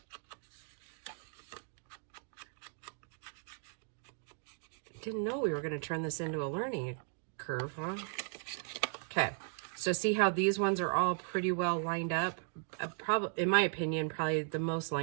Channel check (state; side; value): silent; left; 53 dB below the other